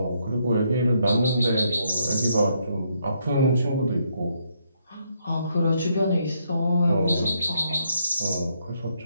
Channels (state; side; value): inverted; both; correlation -0.75